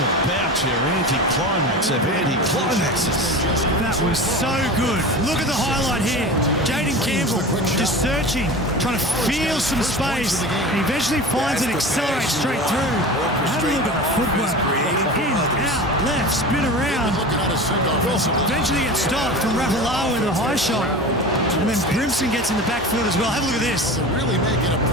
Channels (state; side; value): normal; both; correlation 0.32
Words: about your anti-climax of anti-climaxes. That was so good. Look at the highlight here. Jaden Campbell just searching, trying to feel some space, and eventually finds it, accelerates straight through. Have a look at the footwork. In, out, left, spin around. Eventually gets stopped from Rapalawa with a high shot. And then Brimson gets in the backfield as well. Have a look at this. Really making a